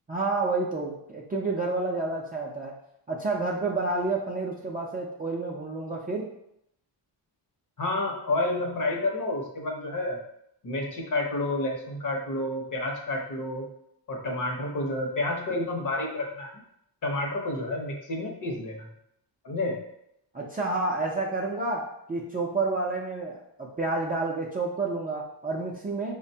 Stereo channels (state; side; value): normal; both; correlation -0.02